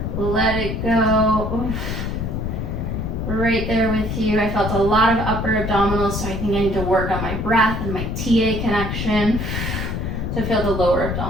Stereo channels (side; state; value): left; noise; rumble, 3 dB below the sound